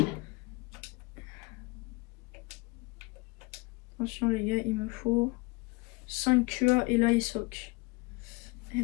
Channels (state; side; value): quieter; right; 25.9 dB